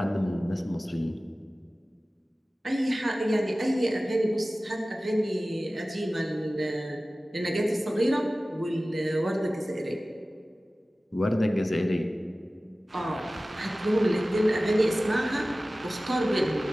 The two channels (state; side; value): normal; both; correlation 0.97